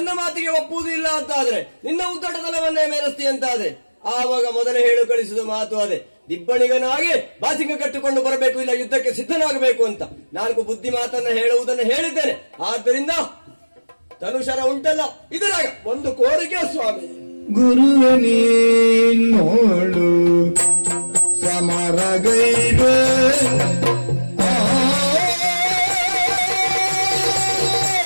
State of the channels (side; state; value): both; inverted; correlation -1.00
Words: ಮಾತಿಗೆ ಒಪ್ಪುವುದು ಇಲ್ಲ ಅಂತ ಆದ್ರೆ, ನಿನ್ನ ಉದ್ದಟತನವನ್ನೇ ಮೇಲಿಸ್ತಿ ಅಂತ ಆದ್ರೆ, ಆವಾಗ ಮೊದಲೇ ಹೇಳು ಕಳಿಸಿದ ಮಾತು ಅದೇ, ದಿಬ್ಬಣಿಗನಾಗಿ ಬಾಸಿಂಗ ಕಟ್ಟಿಕೊಂಡು ಬರಬೇಕು, ಇಲ್ಲ ಯುದ್ಧಕ್ಕೆ ಸಿದ್ಧನಾಗಬೇಕು ಅಂತ 4 ಬುದ್ಧಿ ಮಾತನ್ನ ಹೇಳುವುದನ್ನು ಹೇಳಿದ್ದೇನೆ. ಆದ್ದರಿಂದ ತನುಷರ ಉಂಟಲ್ಲ ಇದರಾಗ ಒಂದು ಕೋರಿಕೆ ಸ್ವಾಮಿ. ಗುರುವ ನೀನೋಳು ಸಮರಗೈವೆ